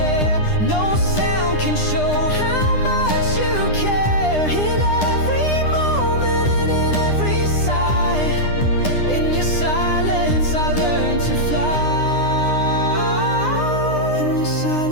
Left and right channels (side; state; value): right; late; 9.8 ms